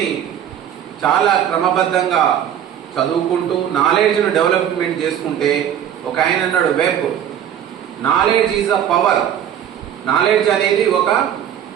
చాలా క్రమబద్ధంగా చదువుకుంటూ నాలెడ్జ్ను డెవలప్మెంట్ చేసుకుంటే, ఒక ఆయన అన్నాడు web, knowledge is a power. Knowledge అనేది ఒక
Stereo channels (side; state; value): left; quieter; 9.8 dB